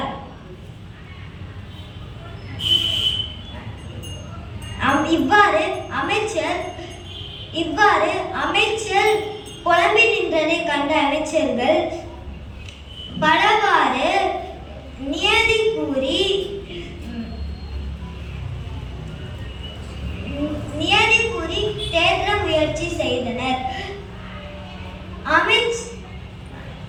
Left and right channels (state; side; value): identical; both; correlation 1.00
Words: இவ்வாறு அமைச்சர் புலம்பி நின்றதை கண்ட அமைச்சர்கள் பலவாறு நியதி கூறி தேற்ற முயற்சி செய்தனர்.